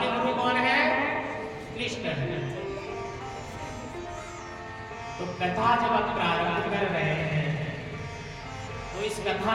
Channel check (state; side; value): identical; both; correlation 1.00